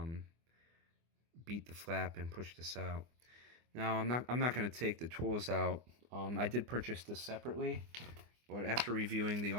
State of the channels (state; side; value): late; left; 24 ms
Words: beat the flap and push this out. Now, I'm not going to take the tools out. I did purchase this separately, but after reviewing the